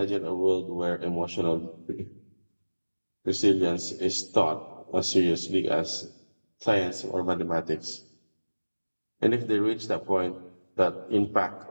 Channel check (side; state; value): both; inverted; correlation -1.00